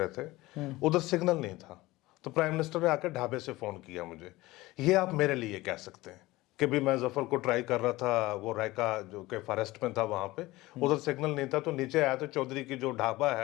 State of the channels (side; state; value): right; quieter; 19.2 dB